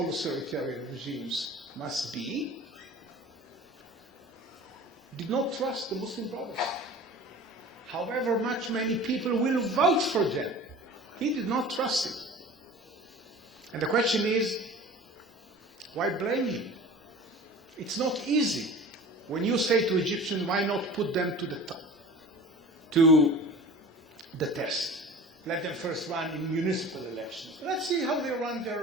authoritarian regimes must be, did not trust the Muslim Brothers. However much many people will vote for them, he did not trust it. And the question is, why blame him? It's not easy. When you say to Egyptians, why not put them to the test? Let them first run in municipal elections. Let's see how they run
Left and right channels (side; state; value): both; normal; correlation 0.40